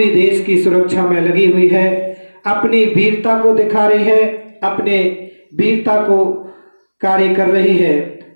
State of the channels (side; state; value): both; inverted; correlation -1.00